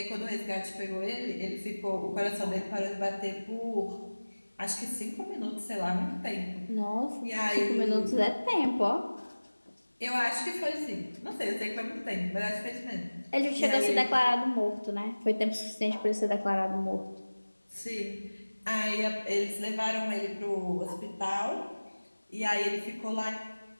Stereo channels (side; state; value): both; inverted; correlation -1.00